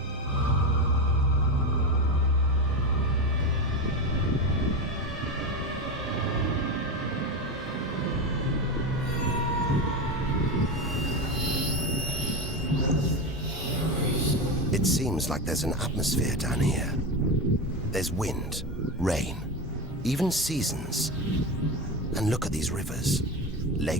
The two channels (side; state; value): both; normal; correlation 0.18